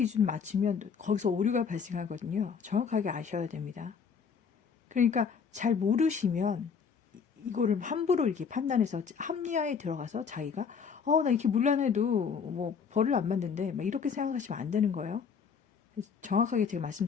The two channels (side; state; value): right; quieter; 6.3 dB